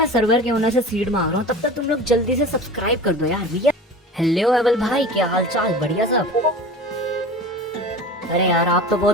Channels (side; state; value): both; normal; correlation 0.36